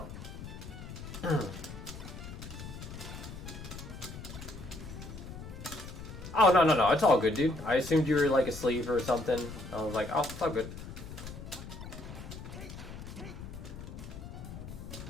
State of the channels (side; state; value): left; noise; rumble, 11 dB below the sound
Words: Oh no, it's all good, dude. I assumed you were like asleep or something. I was like, oh, it's all good.